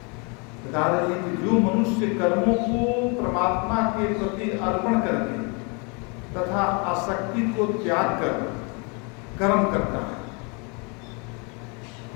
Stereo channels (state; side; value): quieter; right; 32.6 dB